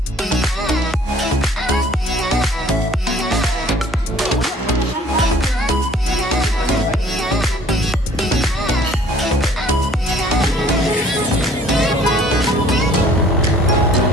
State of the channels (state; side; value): normal; both; correlation 0.55